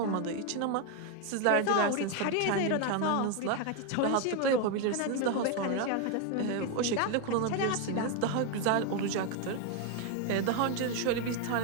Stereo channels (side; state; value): both; different; correlation 0.01